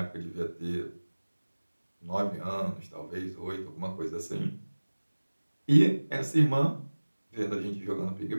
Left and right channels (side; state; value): both; inverted; correlation -1.00